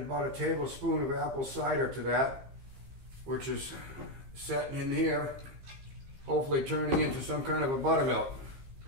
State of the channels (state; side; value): late; left; 15 ms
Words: a tablespoon of apple cider to that, which is setting in here, hopefully turning into some kind of a buttermilk.